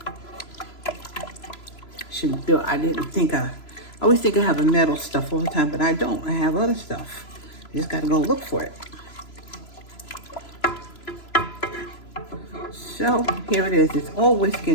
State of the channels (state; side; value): late; right; 3.0 ms